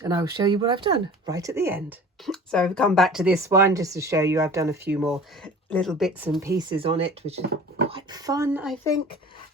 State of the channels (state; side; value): normal; both; correlation 0.42